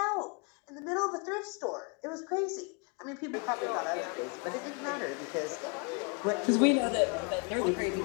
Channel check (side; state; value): right; quieter; 34.0 dB